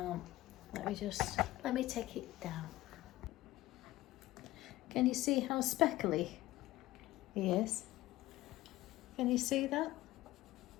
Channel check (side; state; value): right; quieter; 16.9 dB